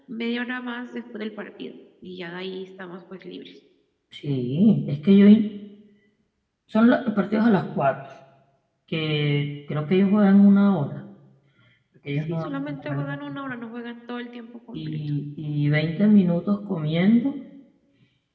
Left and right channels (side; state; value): both; identical; correlation 1.00